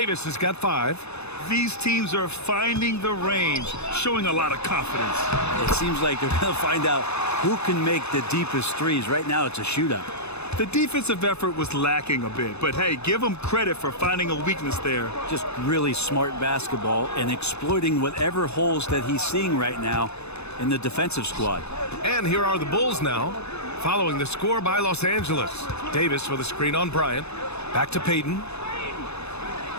has got 5. These teams are finding the range, showing a lot of confidence. It seems like they're going to find out who can make the deepest threes. Right now, it's a shootout. The defensive effort was lacking a bit, but hey, give them credit for finding a weakness there. Just really smart basketball and exploiting whatever holes that he's seeing right now in the defensive squad. And here are the Bulls now, following the score by Los Angeles. Davis with a screen on Bryant. Back to Payton.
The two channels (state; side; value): late; right; 0.80 ms